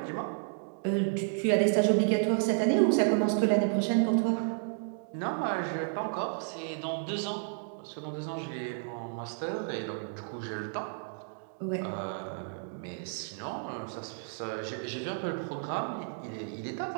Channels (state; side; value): silent; left; digital silence